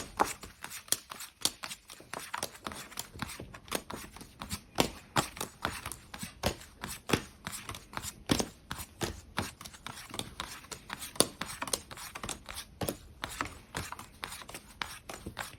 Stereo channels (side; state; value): both; identical; correlation 1.00